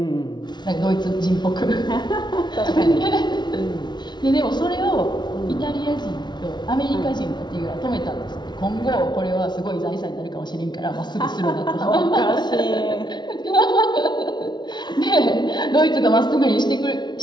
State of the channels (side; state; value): right; late; 0.21 ms